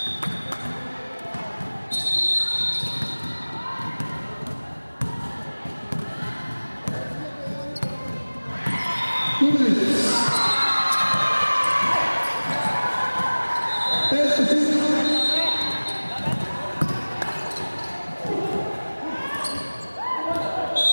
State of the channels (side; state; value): both; inverted; correlation -1.00